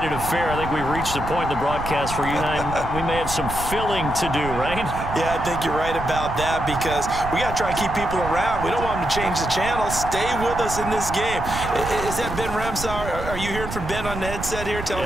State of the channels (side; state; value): right; noise; rumble, 8 dB below the sound